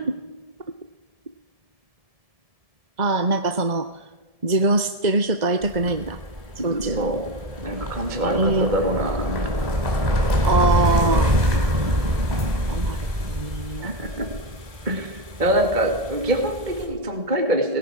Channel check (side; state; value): left; late; 1.7 ms